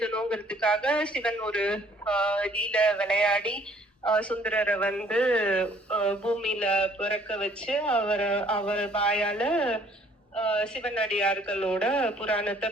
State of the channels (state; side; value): normal; both; correlation 0.59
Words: சிவன் ஒரு லீல விளையாடி சுந்தரரை பூமியில பிறக்க வச்சு அவர் வாயால சிவனடியார்களோட புராணத்தை